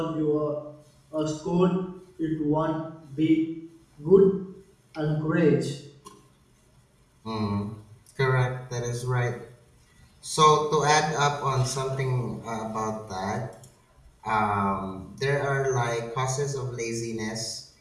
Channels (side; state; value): both; identical; correlation 1.00